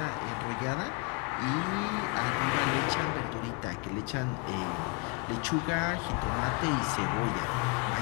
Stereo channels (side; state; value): right; quieter; 29.8 dB